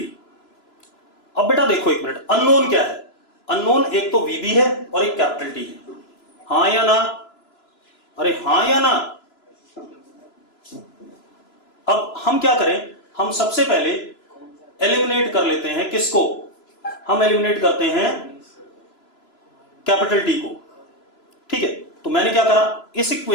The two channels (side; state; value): right; late; 3.0 ms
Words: अब बेटा देखो एक मिनट, अननोन क्या है? अननोन एक तो VB है और एक कैपिटल T है। हां या ना? अरे हां या ना? अब हम क्या करें, हम सबसे पहले एलिमिनेट कर लेते हैं किसको, हम एलिमिनेट करते हैं कैपिटल T को। ठीक है, तो मैंने क्या करा, इस